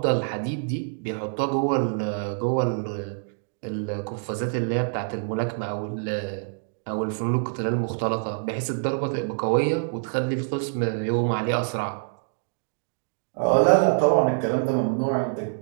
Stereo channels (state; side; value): silent; left; digital silence